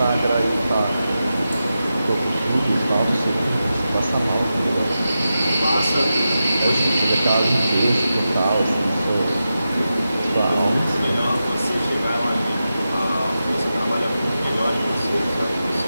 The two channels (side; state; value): both; inverted; correlation -0.91